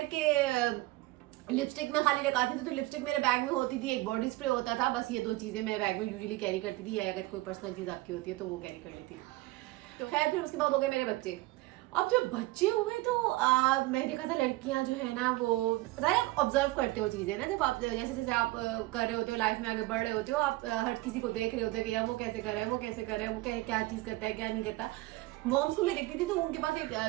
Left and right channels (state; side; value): quieter; left; 19.7 dB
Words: कि लिपस्टिक में खाली लगाती थी तो लिपस्टिक मेरे बैग में होती थी, एक बॉडी स्प्रे होता था, बस ये दो चीज़ें मैं बैग में यूजुअली कैरी करती थी, या अगर कोई पर्सनल चीज़ आपकी होती है तो वो कैरी कर लेती थी। तो खैर फिर उसके बाद हो गए मेरे बच्चे। अब जब बच्चे हुए तो मैं देखा था लड़कियां जो है ना वो आप ऑब्जर्व करते हो चीज़ें ना, जब आप जैसे जैसे आप कर रहे होते हो लाइफ में आगे बढ़ रहे होते हो, आप हर किसी को देख रहे होते हो कि यार वो कैसे कर रहा है, वो कैसे कर रहा है, वो क्या चीज़ करता है क्या नहीं करता। मॉम्स को मैं देखती थी तो उनके पास एक